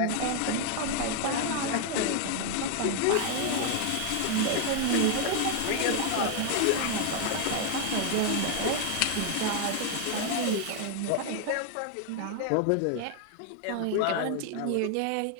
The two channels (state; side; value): different; both; correlation 0.00